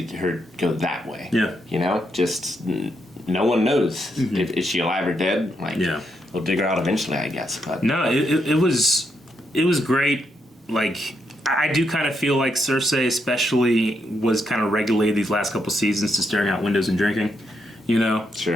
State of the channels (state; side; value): normal; both; correlation 0.80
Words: her go that way. Yeah. You know, just no one knows if is she alive or dead. Like, we'll dig her out eventually, I guess. But No, it was great. Like, I do kind of feel like Cersei especially was kind of regulated these last couple seasons to staring out windows and drinking, you know?